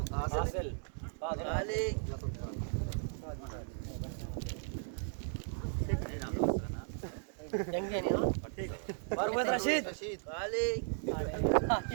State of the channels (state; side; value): silent; left; digital silence